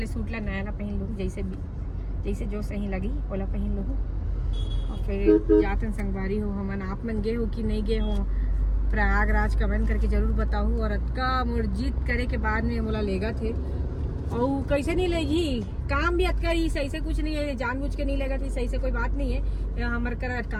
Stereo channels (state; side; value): identical; both; correlation 1.00